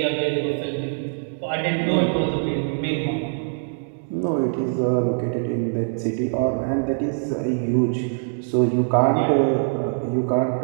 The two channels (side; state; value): left; silent; digital silence